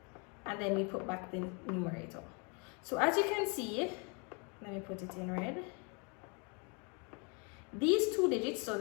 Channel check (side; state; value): right; quieter; 34.5 dB